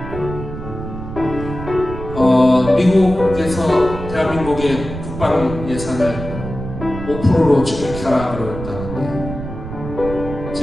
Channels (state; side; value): noise; right; rumble, 9 dB below the sound